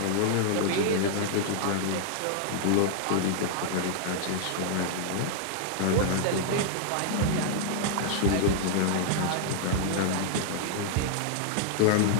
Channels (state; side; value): different; both; correlation 0.00